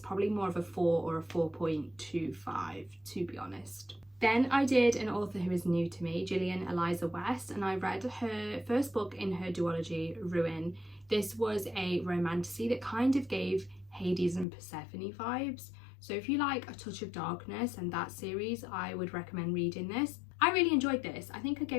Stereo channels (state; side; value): drops out; right; at 14.5 s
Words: more of a 4 or a 4.25, to be honest. Then I did an author who is new to me, Gillian Eliza West, and I read her first book in her duology, Ruin. This was a romantasy that kind of gave Hades and Persephone vibes. So if you like a touch of darkness and that series, I would recommend reading this. I really enjoyed this. I think I